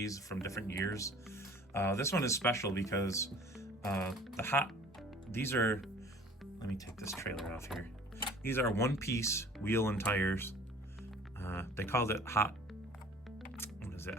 from different years. This one is special because these are, let me take this trailer off here. These are one-piece wheel and tires. They called it hot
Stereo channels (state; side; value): normal; both; correlation 0.48